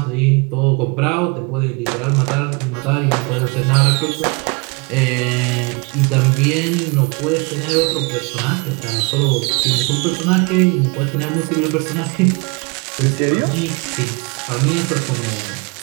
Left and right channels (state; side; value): quieter; left; 30.2 dB